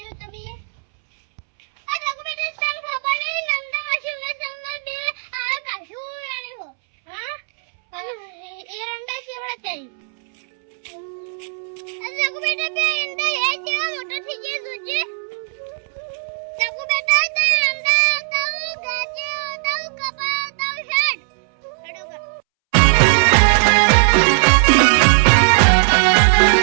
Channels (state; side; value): silent; left; 67 dB below the other